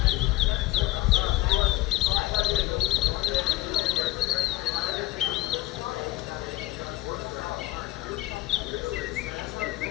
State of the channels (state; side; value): quieter; right; 17.4 dB